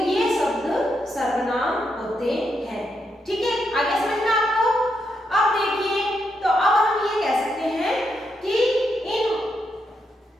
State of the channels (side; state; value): both; normal; correlation 0.81